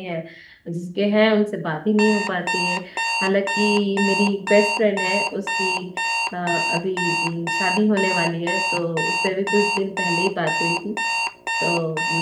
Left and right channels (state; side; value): identical; both; correlation 1.00